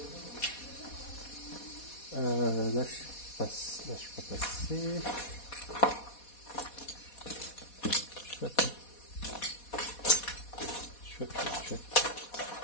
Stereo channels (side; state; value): right; late; 4.2 ms